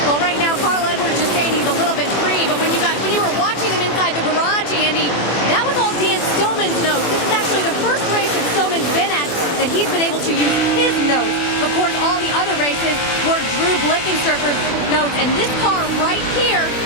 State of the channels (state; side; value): late; right; 24 ms